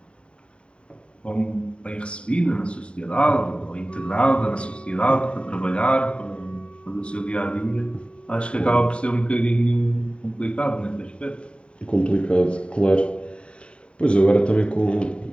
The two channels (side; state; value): right; late; 0.056 ms